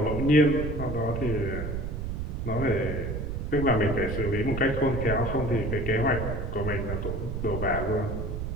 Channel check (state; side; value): noise; right; rumble, 4 dB below the sound